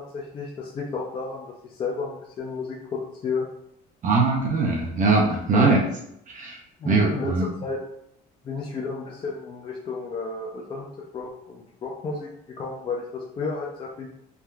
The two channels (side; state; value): both; normal; correlation 0.34